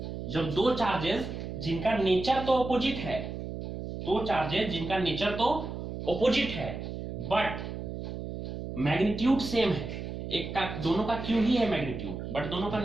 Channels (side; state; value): right; noise; hum, 7 dB below the sound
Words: जब दो चार्जेस जिनका नेचर तो ऑपोजिट है, बट मैग्नीट्यूड सेम है, एक का दोनों का q ही है मैग्नीट्यूड, बट दोनों का